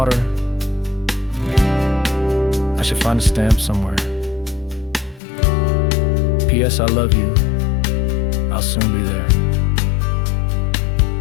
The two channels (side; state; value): right; drops out; at 5.2 s